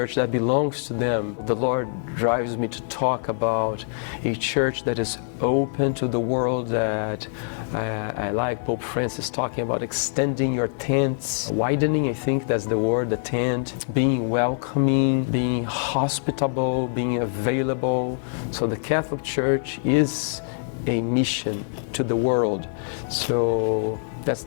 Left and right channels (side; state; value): right; silent; 56 dB below the other